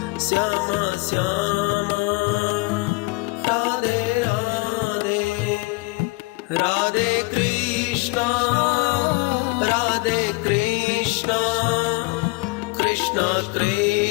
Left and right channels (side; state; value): right; quieter; 25.9 dB